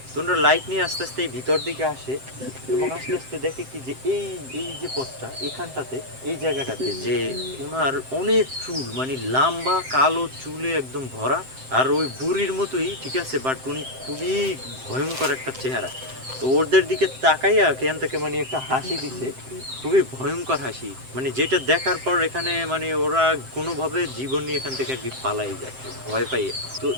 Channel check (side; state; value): left; late; 7.7 ms